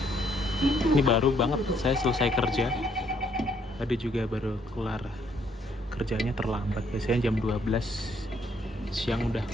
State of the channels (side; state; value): both; normal; correlation 0.69